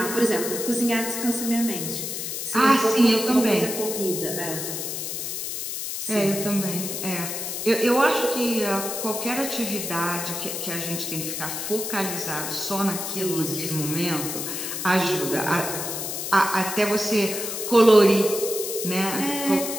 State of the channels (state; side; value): noise; left; hiss, 4 dB below the sound